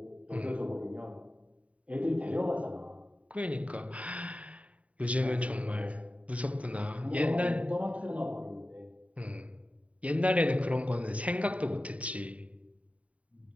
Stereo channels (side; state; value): left; late; 0.067 ms